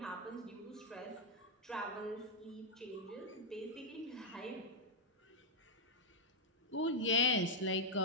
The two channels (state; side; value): normal; both; correlation -0.02